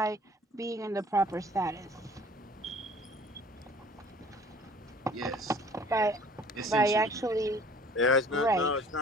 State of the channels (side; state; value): both; normal; correlation 0.50